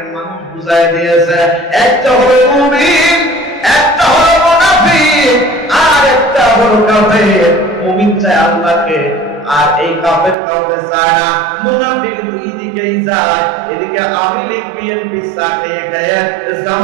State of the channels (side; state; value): left; drops out; at 10.4 s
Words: মানুষ বুঝায় দিয়েছে, একটা হলো মুমিন, একটা হলো মুনাফিক, আর একটা হলো কাফের। মুমিন চায় আল্লাহকে, আর এই কাফের কাউকে চায় না। মুনাফিক দুই দিকেই যায়, এদিকে আওয়ামী লীগ বিএনপি চাকরি খেয়ে